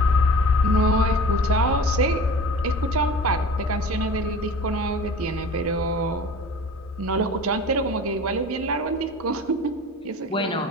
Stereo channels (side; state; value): both; normal; correlation 0.40